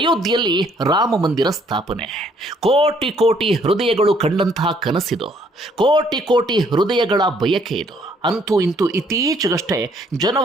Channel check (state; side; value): normal; both; correlation 0.65